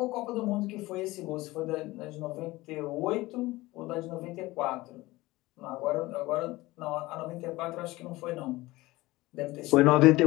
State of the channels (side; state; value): right; quieter; 19.6 dB